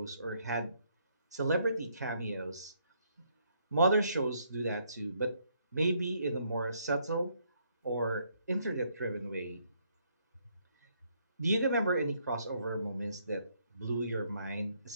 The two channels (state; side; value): inverted; both; correlation -0.71